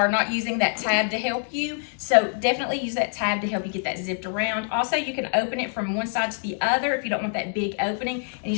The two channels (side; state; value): right; silent; digital silence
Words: not using that tab to help you. So definitely use that tab to help you get that zipped around. Also, you can open it from one side to the other if you don't want that big opening and you